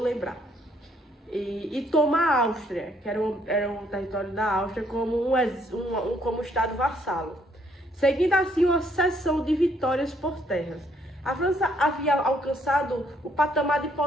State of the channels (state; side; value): normal; both; correlation 0.68